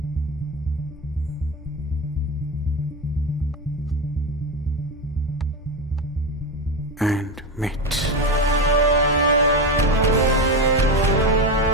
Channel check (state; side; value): normal; both; correlation 0.16